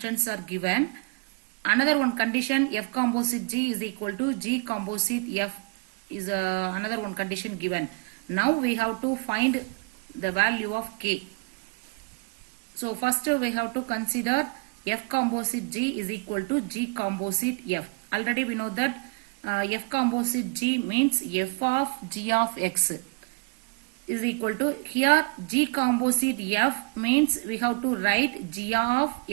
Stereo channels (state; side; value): quieter; left; 31.4 dB